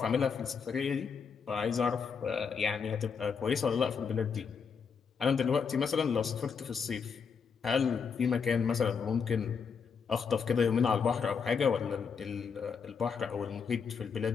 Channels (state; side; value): quieter; right; 6.1 dB